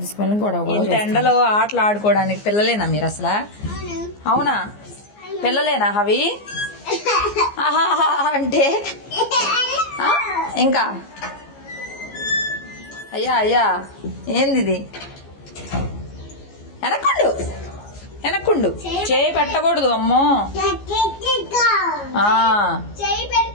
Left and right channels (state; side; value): late; right; 14 ms